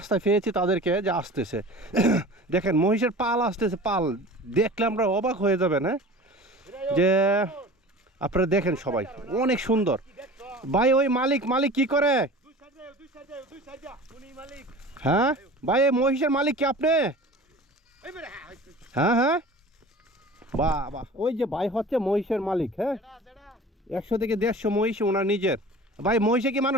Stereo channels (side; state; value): both; normal; correlation 0.39